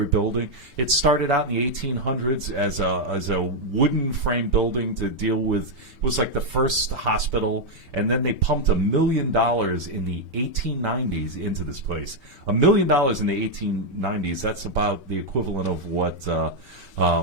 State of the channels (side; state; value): left; late; 5.1 ms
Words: building. It started out in the 1800s as a wooden frame building to deal with, it was like the first hospital, and then they pumped $1 million in the 1890s into this place. $1 million in the 1890s, that's about the equivalent of what